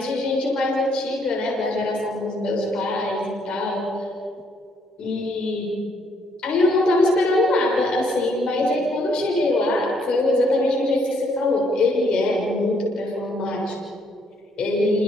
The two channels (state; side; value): normal; both; correlation 0.69